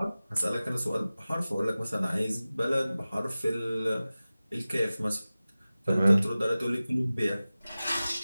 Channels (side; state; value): both; inverted; correlation -0.97